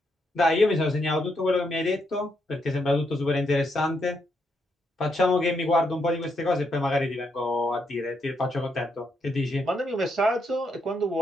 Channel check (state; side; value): normal; both; correlation 0.78